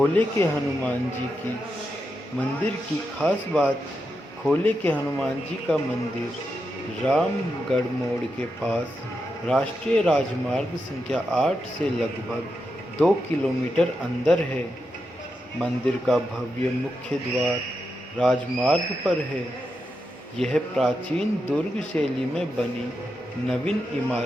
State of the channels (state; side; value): normal; both; correlation 0.86